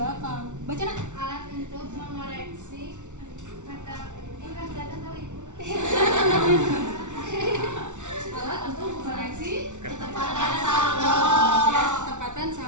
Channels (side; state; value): left; late; 0.85 ms